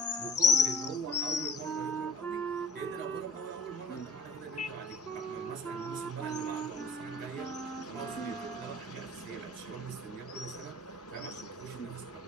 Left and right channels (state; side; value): normal; both; correlation 0.52